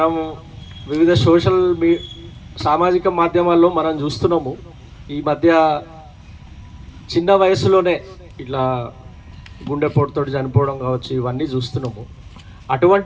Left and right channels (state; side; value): identical; both; correlation 1.00